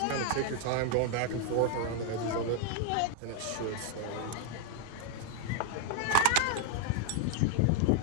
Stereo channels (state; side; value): different; both; correlation 0.00